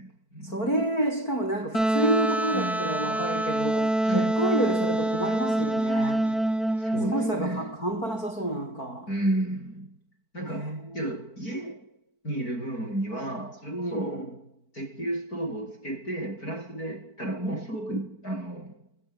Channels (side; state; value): right; late; 4.5 ms